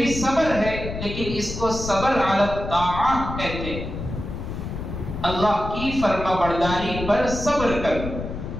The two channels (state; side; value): noise; left; rumble, 7 dB below the sound